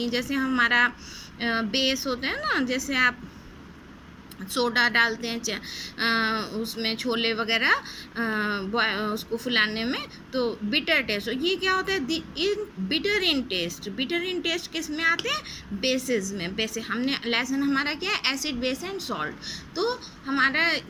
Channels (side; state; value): both; identical; correlation 1.00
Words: हैं। जैसे हमारा बेस होता है ना, जैसे आप सोडा डालते हैं उसमें छोले वगैरह उसको फुलाने में, तो बिटर टेस्ट। ये क्या होता है? बिटर इन टेस्ट किस में आते हैं? बेसिस में। बेसिस हमने लेसन हमारा क्या है? Acid base and salt. तो हमारा